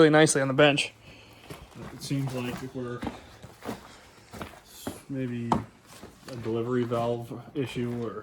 nicely on the bench. It seems like if we're maybe a delivery valve issue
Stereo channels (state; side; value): identical; both; correlation 1.00